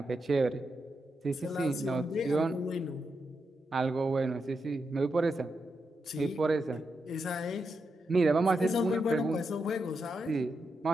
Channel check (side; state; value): both; normal; correlation 0.85